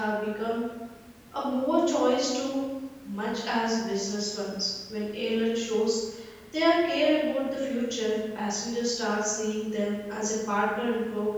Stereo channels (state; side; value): identical; both; correlation 1.00